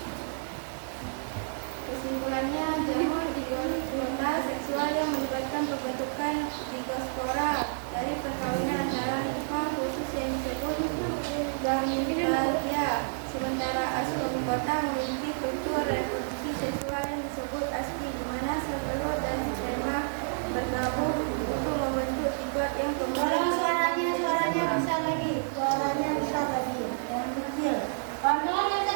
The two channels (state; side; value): silent; left; digital silence